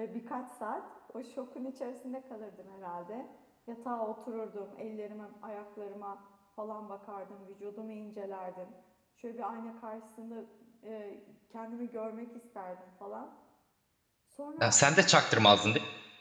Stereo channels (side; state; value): both; identical; correlation 1.00